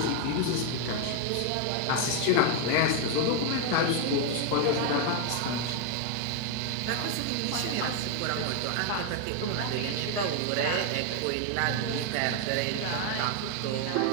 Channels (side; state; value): both; different; correlation 0.01